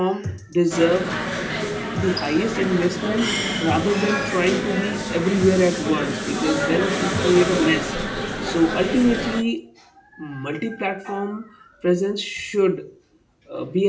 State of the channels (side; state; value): both; identical; correlation 1.00